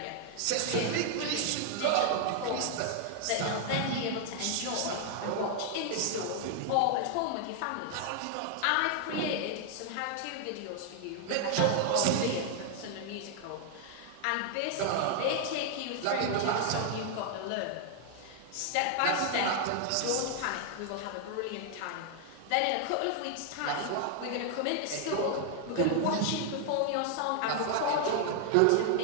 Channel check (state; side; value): different; both; correlation 0.00